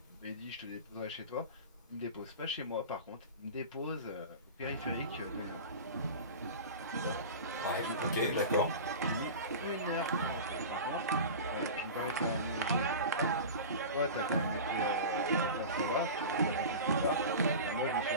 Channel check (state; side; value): inverted; both; correlation -0.31